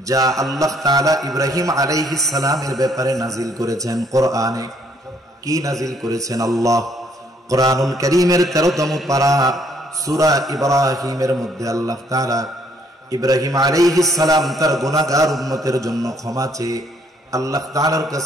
যা আল্লাহ তাআলা ইব্রাহিম আলাইহিস সালামের ব্যাপারে নাজিল করেছেন। কোরআনে কি নাজিল করেছেন? আল্লাহ কোরআনুল কারীমের 13তম পারা সূরা ইব্রাহিমের মধ্যে আল্লাহ তাআলা ইব্রাহিম আলাইহিস সালাম তার গুনাহগার উম্মতের জন্য ক্ষমা চেয়ে আল্লাহ তাআলার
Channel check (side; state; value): both; normal; correlation 0.66